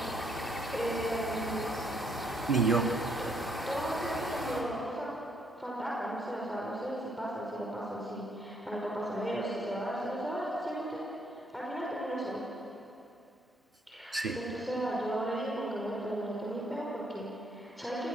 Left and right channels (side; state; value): both; normal; correlation 0.70